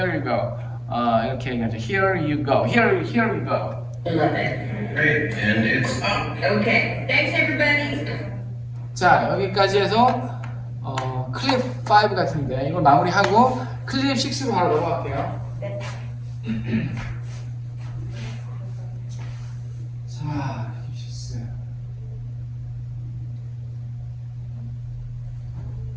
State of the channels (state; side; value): identical; both; correlation 1.00